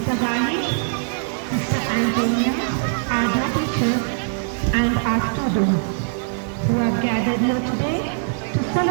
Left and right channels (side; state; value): left; silent; digital silence